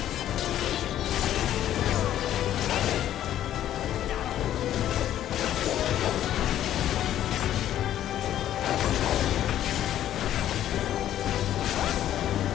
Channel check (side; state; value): right; quieter; 11.8 dB